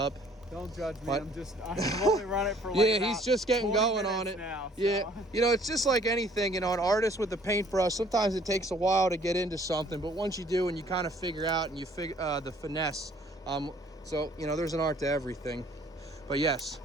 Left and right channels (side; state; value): both; normal; correlation 0.58